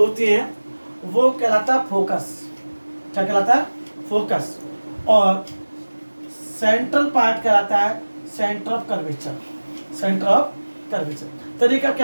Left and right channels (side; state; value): both; inverted; correlation -1.00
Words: हैं वो कहलाता है फोकस। क्या कहलाता है? फोकस। और सेंट्रल पार्ट कहलाता है centre of curvature. Centre of curvature. तरीका